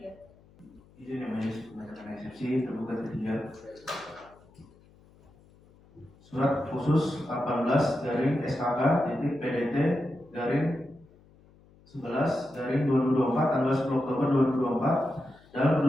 Izin yang majelis membacakan eksepsi tergugat ketiga. Surat khusus 18 garing SKK titik PDT garing 11 garing 2024 tanggal 10 Oktober 2024 dalam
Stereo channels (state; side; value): noise; left; hum, 27 dB below the sound